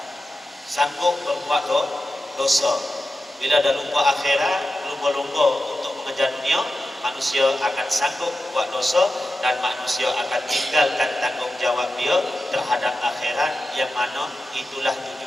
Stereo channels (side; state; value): both; normal; correlation 0.92